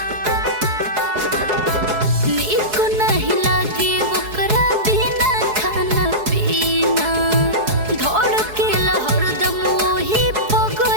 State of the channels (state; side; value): late; left; 4.7 ms